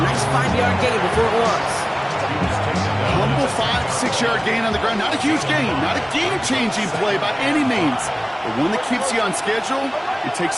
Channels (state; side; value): identical; both; correlation 1.00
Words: nice 5-yard gain before it was. Humble 5-6-yard gain on the ground. Not a huge gain, not a game-changing play by any means, but one that keeps you on schedule and takes